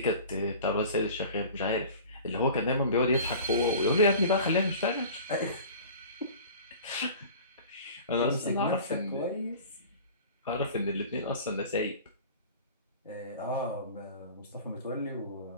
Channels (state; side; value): inverted; both; correlation -0.41